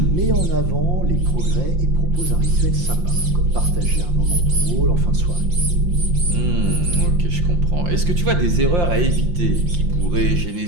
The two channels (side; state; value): left; late; 5.7 ms